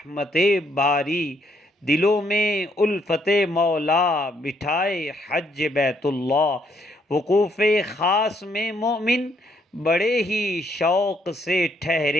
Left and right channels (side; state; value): both; normal; correlation 0.71